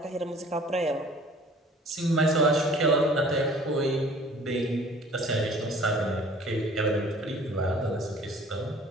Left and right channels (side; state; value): both; normal; correlation 0.50